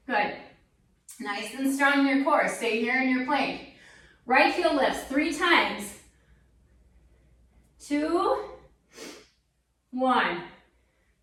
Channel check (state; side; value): identical; both; correlation 1.00